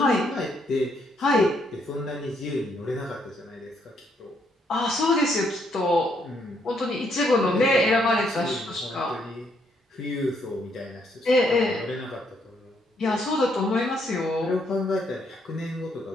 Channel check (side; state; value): both; normal; correlation 0.72